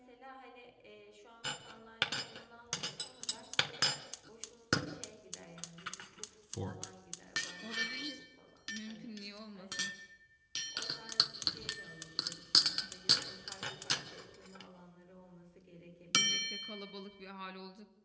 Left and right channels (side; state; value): both; identical; correlation 1.00